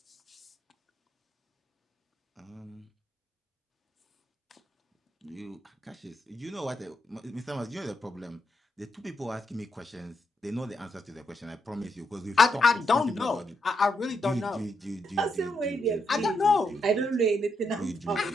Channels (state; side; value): normal; both; correlation 0.80